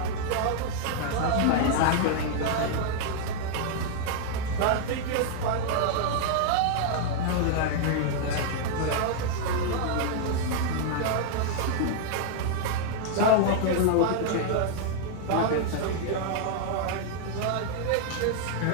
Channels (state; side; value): different; both; correlation 0.00